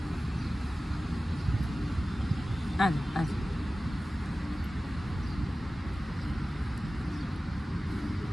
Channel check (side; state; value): both; normal; correlation 0.96